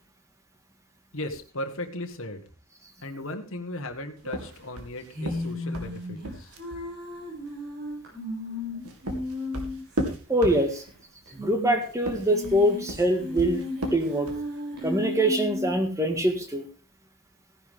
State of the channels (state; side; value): normal; both; correlation 0.46